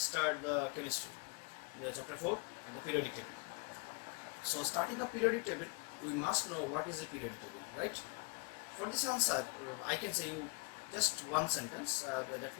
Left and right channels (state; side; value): quieter; right; 31.7 dB